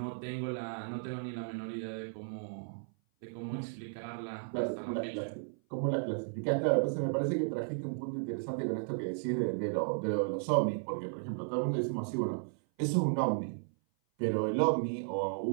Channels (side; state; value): left; silent; 55 dB below the other